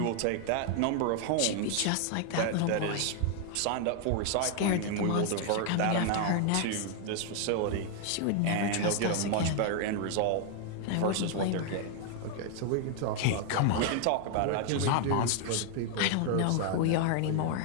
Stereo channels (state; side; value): different; both; correlation 0.00